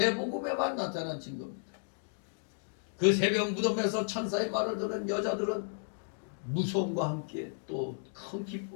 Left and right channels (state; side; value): silent; right; digital silence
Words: 나타난 증거입니다. 그 새벽 무덤에서 천사의 말을 들은 여자들은 무서움과 함께 또 큰